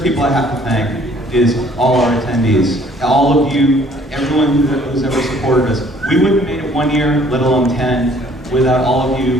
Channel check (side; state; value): both; normal; correlation 0.58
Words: people I have to thank is all our attendees. All of you, everyone who's ever supported us. We wouldn't have made it 1 year, let alone 10, without all of